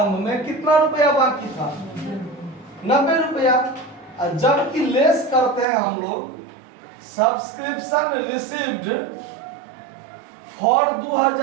में कितना रुपया बाकी था 90 रुपया। जबकि लेस करते हैं हम लोग subscription received for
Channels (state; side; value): drops out; left; at 5.7 s